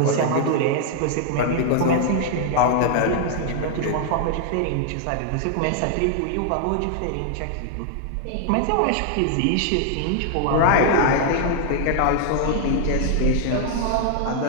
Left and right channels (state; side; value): different; both; correlation 0.00